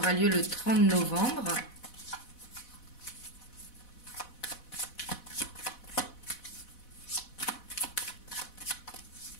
lieu le 30 novembre.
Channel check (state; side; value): late; right; 4.1 ms